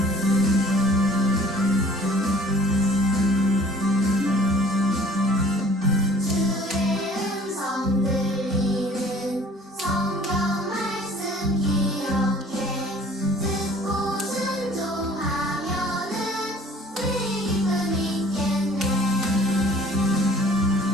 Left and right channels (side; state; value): both; normal; correlation 0.51